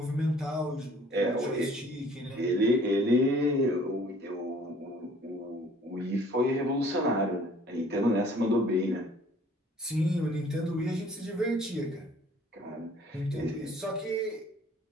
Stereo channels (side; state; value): both; normal; correlation 0.55